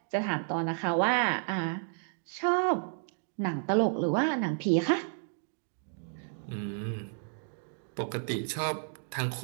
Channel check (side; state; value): left; silent; 57 dB below the other